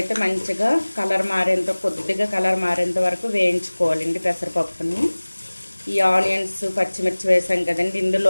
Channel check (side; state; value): both; inverted; correlation -1.00